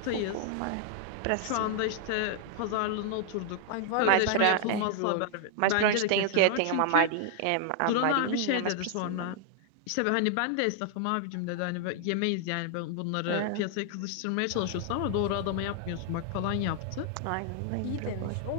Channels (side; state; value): both; different; correlation -0.01